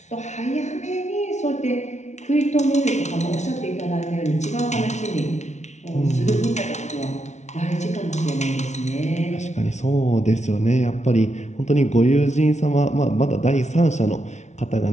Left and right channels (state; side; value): late; right; 0.33 ms